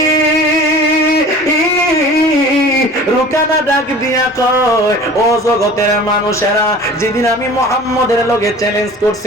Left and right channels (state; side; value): normal; both; correlation 0.43